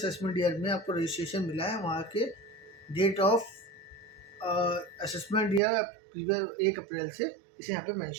ईयर में आपको रजिस्ट्रेशन मिला है वहाँ के date of assessment year previous 1 April से इसे यहाँ पे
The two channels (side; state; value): left; drops out; at 5.6 s